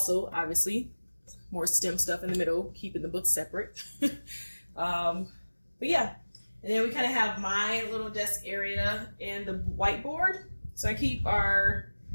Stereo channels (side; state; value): both; inverted; correlation -1.00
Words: obviously, more STEM stuff in the middle, keeping the books separate. But yeah, and then we kind of have my little desk area and the whiteboard. So I keep our